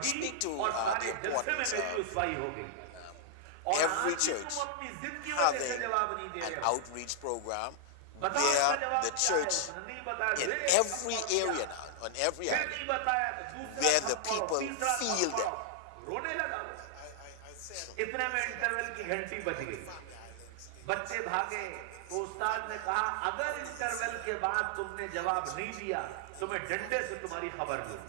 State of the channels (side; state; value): both; different; correlation -0.01